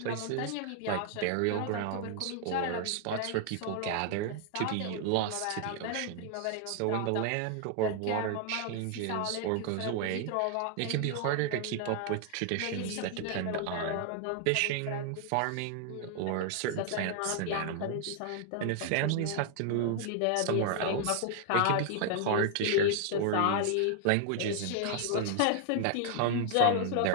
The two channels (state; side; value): different; both; correlation 0.00